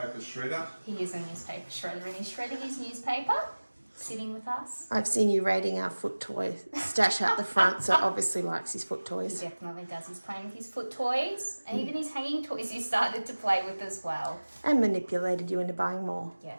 shredder? He is a newspaper shredder and he's shredding his newspaper, sitting with us. I've seen you raiding our foot toy stash out the front, so obviously likes his foot He toys. definitely does. He's playing with his foot toys and even his hanging toys he started to play with as well. And manipulated you into buying more.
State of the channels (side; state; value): both; inverted; correlation -1.00